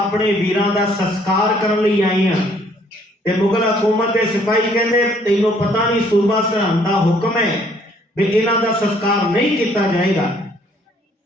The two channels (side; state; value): both; normal; correlation 0.63